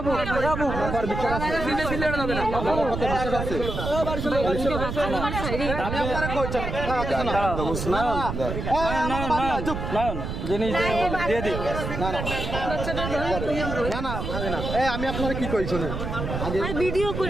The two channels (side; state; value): right; noise; rumble, 4 dB below the sound